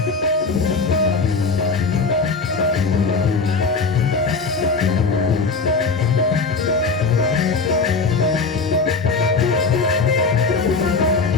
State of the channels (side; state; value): right; quieter; 4.3 dB